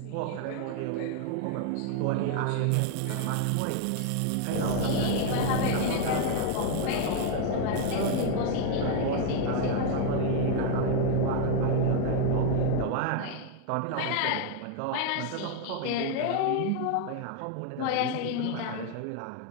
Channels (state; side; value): different; both; correlation 0.01